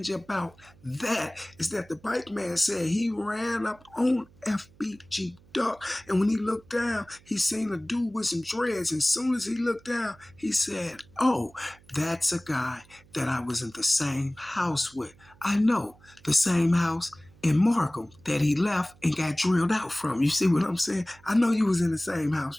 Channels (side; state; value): right; noise; hum, 27 dB below the sound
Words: about that is that the bike man said he ran up on FBG Duck, and when he looked down, he seen a dude with some dreads. And as soon as he looked down, he said, "Oh, that's a guy that I was in the same house with. I know, the same house in Markham that he left and got drilled out from." You see what I'm saying? I know you was in the same